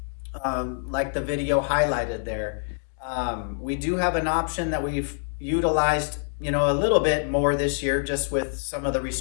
like the video highlighted there. We do have an option that we've utilized, a little bit more this year, just with some of the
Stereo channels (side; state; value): right; silent; 61 dB below the other